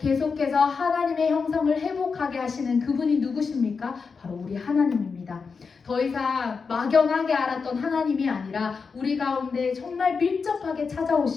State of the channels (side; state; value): right; quieter; 5.2 dB